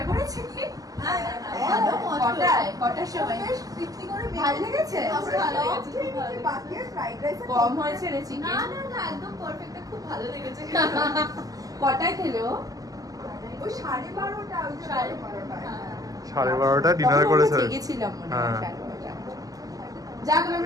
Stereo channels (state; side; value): late; left; 0.17 ms